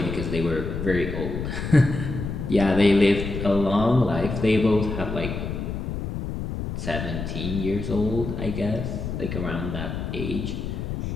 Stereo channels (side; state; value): left; noise; rumble, 5 dB below the sound